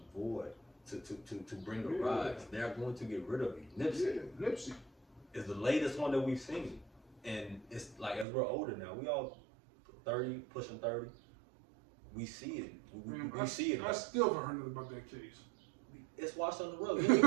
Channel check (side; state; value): left; drops out; at 8.2 s